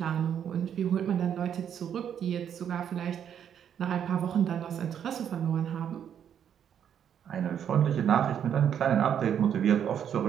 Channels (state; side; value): quieter; left; 8.9 dB